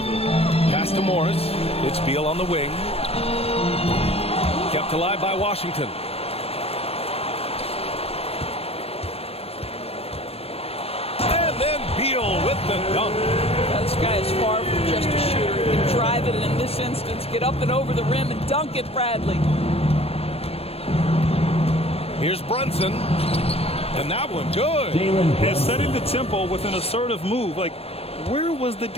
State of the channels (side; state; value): right; late; 0.29 ms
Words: Pass to Morris. It's Beal on the wing. Kept alive by Washington. And then Beal with the dunk. This guy is far from just a shooter. He can drive it, and in this instance, get up and over the rim and dunk it, Bradley. Here's Brunson. And that one good. And setting the tempo with an assertive move. Like, where was the